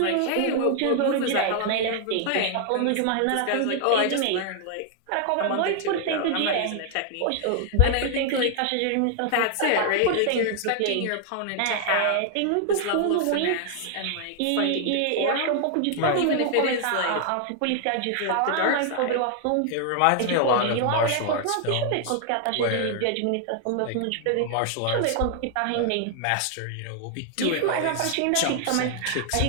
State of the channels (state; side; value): different; both; correlation 0.00